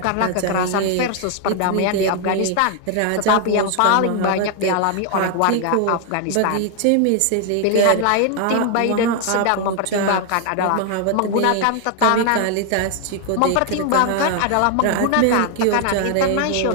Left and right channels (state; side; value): different; both; correlation 0.00